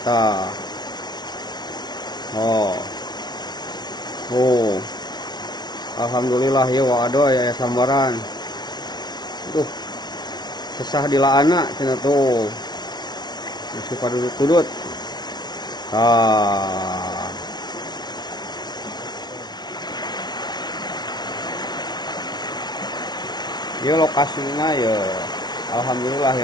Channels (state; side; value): late; right; 0.20 ms